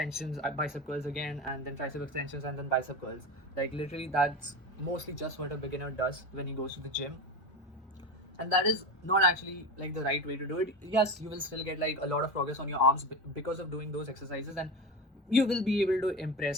bicep curls again, and then tricep extensions, and then bicep curls. Like literally, that's mostly just what a beginner does when he goes to the gym, and that is not actually like the right way to do it. Yes, you will still get like a lot of progress on your arms because of doing those exercises, and you will be able to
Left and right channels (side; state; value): both; normal; correlation 0.23